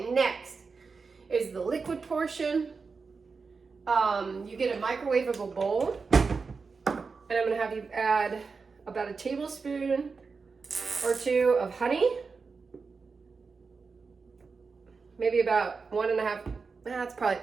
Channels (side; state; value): left; quieter; 4.8 dB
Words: next is the liquid portion. You get a microwavable bowl and I'm gonna have you add about a tablespoon or 2 of honey. Maybe about 1.5. That's